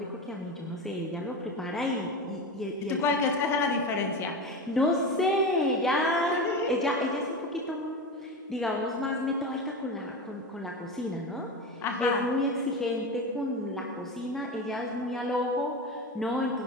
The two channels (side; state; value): both; normal; correlation 0.24